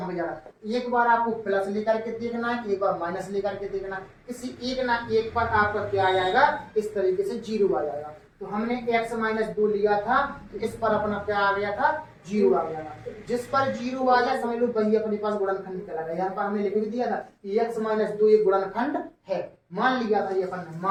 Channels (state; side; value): identical; both; correlation 1.00